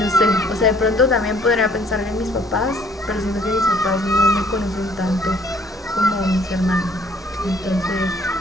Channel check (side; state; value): both; normal; correlation 0.61